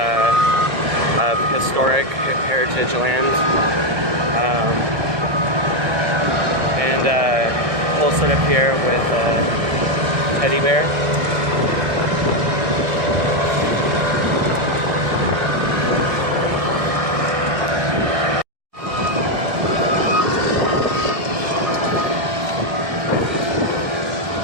of historic heritage land. And whole setup here with a teddy bear.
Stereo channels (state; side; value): late; left; 1.6 ms